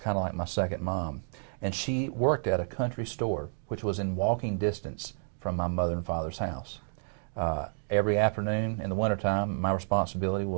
of like my second mom, and she worked at a country store which was in walking distance from my mother and father's house. Every afternoon in the wintertime, my responsibility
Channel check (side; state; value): left; silent; digital silence